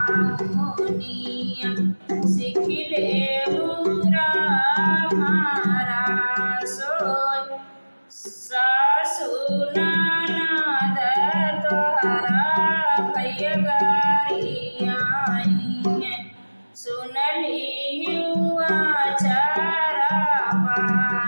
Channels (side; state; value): both; inverted; correlation -1.00